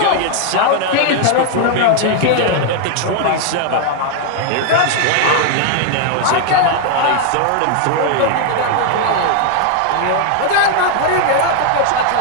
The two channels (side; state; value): both; different; correlation 0.00